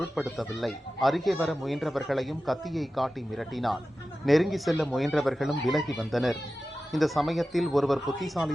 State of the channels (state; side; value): normal; both; correlation 0.94